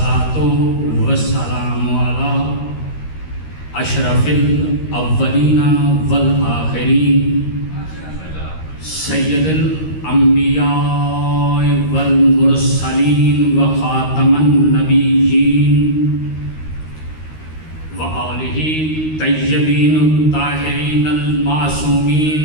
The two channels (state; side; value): late; right; 13 ms